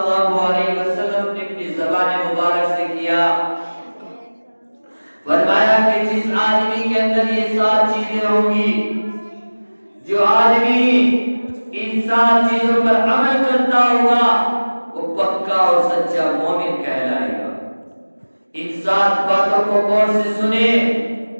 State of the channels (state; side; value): inverted; both; correlation -1.00